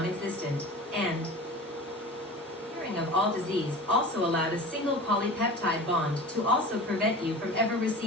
and of all disease also allowed a single polypeptide bond to also prevent you from ever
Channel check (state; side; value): normal; both; correlation 0.35